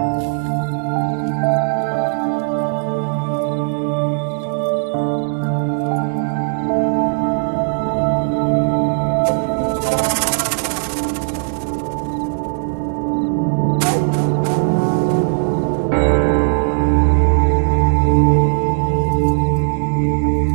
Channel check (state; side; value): silent; left; 57 dB below the other